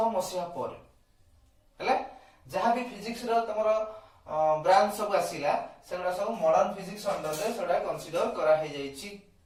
मसिहा पर हैला जहां भी फिजिक्स रो तमरो ब्रांच सब आसीला सेगुडा सब मॉडर्न फिजिक्स अंडर रे सेडा कंसीडर करा हे जाईची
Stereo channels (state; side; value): identical; both; correlation 1.00